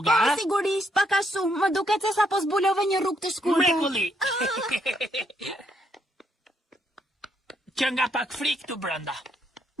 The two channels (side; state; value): both; normal; correlation 0.75